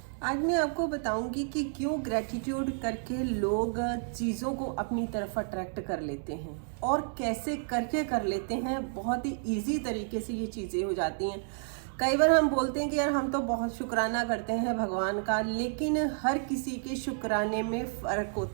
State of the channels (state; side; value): silent; left; digital silence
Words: आज मैं आपको बताऊंगी कि क्यों ग्रैटिट्यूड करके लोग चीज़ों को अपनी तरफ अट्रैक्ट कर लेते हैं और कैसे करके कर लेते हैं। बहुत ही इजी तरीके से ये चीज़ें हो जाती हैं। कई बार हम बोलते हैं कि यार हम तो बहुत शुक्राना करते हैं भगवान का, लेकिन हर किसी के शुक्राने में फ़र्क